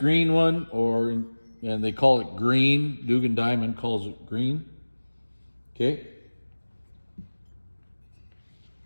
one, and they call it green. Dugan Diamond calls it green. Okay.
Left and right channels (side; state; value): both; inverted; correlation -1.00